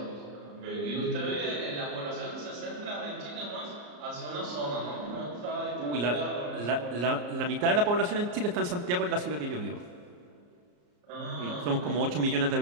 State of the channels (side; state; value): left; late; 34 ms